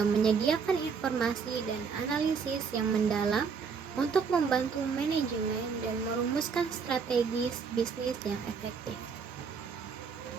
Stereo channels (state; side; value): quieter; left; 5.7 dB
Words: menyediakan informasi dan analisis yang mendalam untuk membantu manajemen dan merumuskan strategi bisnis yang efektif.